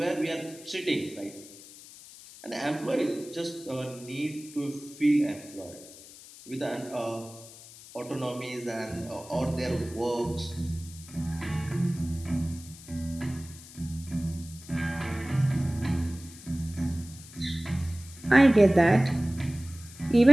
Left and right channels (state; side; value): noise; left; hiss, 18 dB below the sound